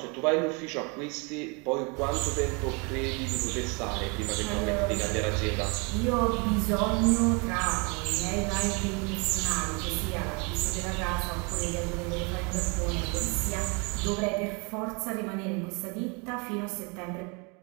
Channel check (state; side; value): quieter; left; 31.7 dB